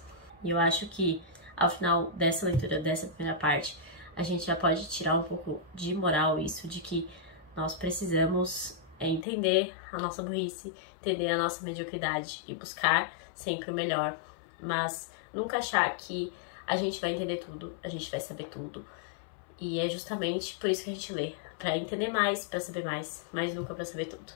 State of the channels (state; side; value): drops out; right; at 9.2 s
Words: E eu acho que ao final dessa leitura, dessa primeira parte, a gente já pode tirar um pouco de moral isso, de que nós precisamos entender a nossa burrice, entender a nossa mediocridade e buscar sempre o melhor, mas nunca achar que a gente vai entender tudo, a gente vai saber tudo. E é justamente por isso que a gente lê, para entender mais, para saber mais, mas nunca para saber tudo.